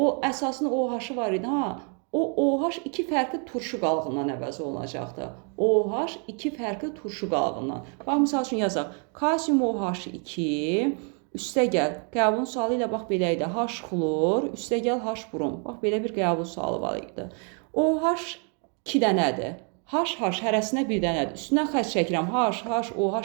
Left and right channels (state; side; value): quieter; left; 39.7 dB